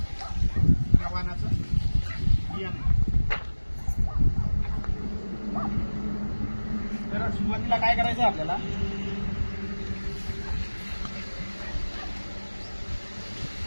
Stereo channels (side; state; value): both; inverted; correlation -1.00